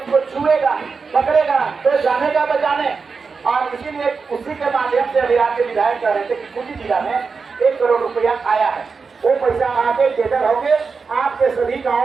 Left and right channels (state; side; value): quieter; left; 5.0 dB